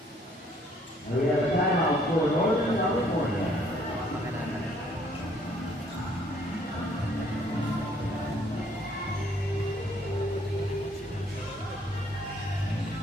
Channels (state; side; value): normal; both; correlation 0.63